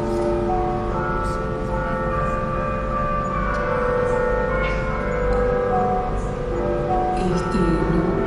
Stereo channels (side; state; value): both; identical; correlation 1.00